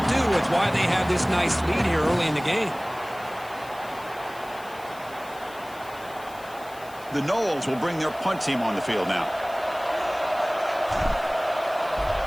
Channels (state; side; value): noise; left; hiss, 22 dB below the sound